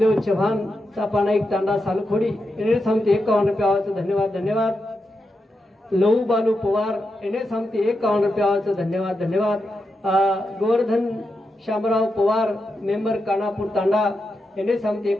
चव्हाण चा पाना एक तांडा सालखोडी एने सांगते 51 रुपयाचं धन्यवाद धन्यवाद लहू बालू पवार एने सांगते 51 रुपयाचं धन्यवाद धन्यवाद गोवर्धन शामराव पवार मेंबर कानापूर तांडा एने सांगते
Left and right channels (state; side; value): normal; both; correlation 0.87